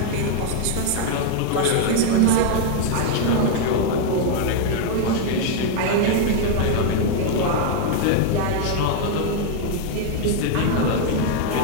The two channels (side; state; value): both; different; correlation 0.00